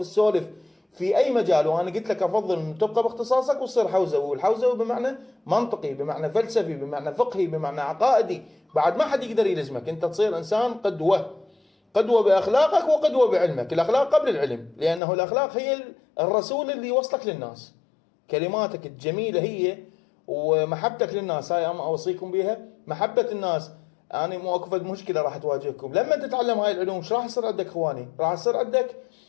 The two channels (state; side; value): drops out; right; at 15.0 s